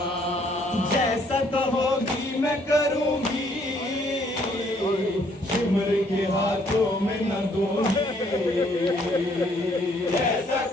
जैसा कहोगी मैं करूंगी, शिमर के हाथों में न दूंगी। जैसा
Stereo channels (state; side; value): normal; both; correlation 0.65